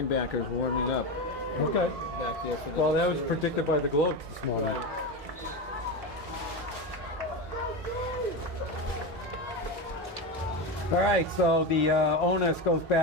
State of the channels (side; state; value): both; normal; correlation 0.18